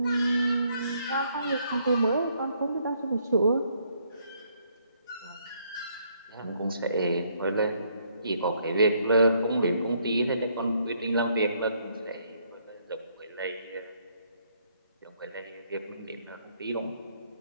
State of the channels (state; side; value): inverted; both; correlation -0.70